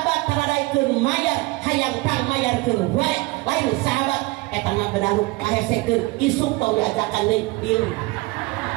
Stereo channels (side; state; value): left; quieter; 23.5 dB